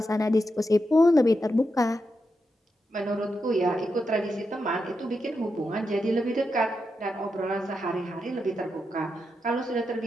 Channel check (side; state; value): both; normal; correlation 0.86